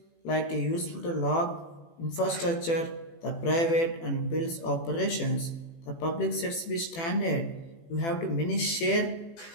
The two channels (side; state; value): right; late; 18 ms